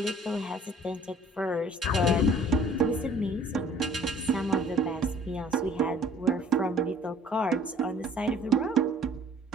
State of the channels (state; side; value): normal; both; correlation 0.53